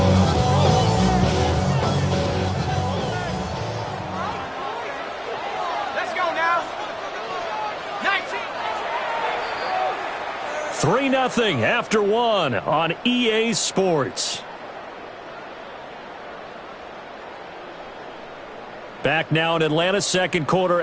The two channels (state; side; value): identical; both; correlation 1.00